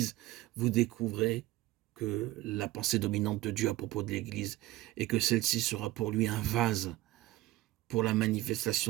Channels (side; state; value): left; quieter; 17.1 dB